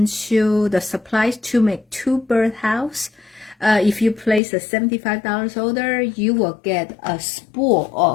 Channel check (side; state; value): right; drops out; at 4.4 s